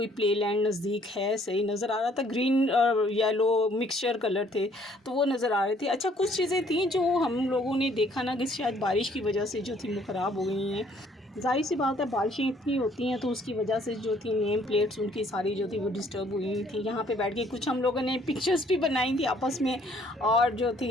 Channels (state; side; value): normal; both; correlation 0.62